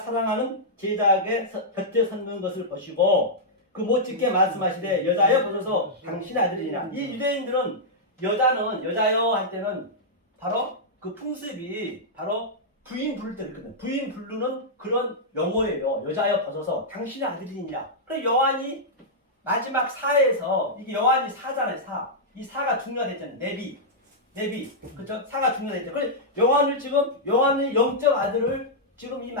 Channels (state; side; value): normal; both; correlation -0.08